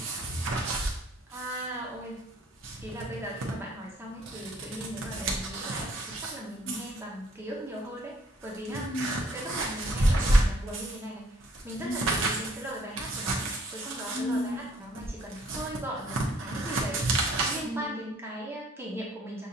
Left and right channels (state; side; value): normal; both; correlation 0.62